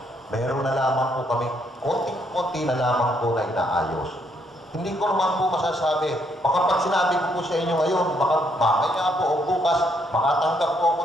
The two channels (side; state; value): both; normal; correlation 0.72